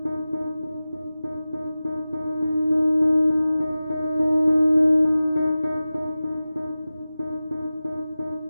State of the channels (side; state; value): both; inverted; correlation -0.95